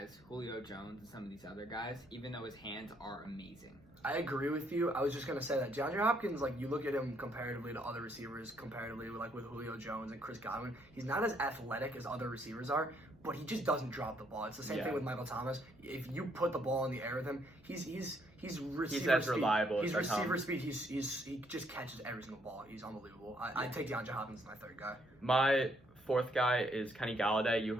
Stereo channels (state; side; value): noise; right; hum, 28 dB below the sound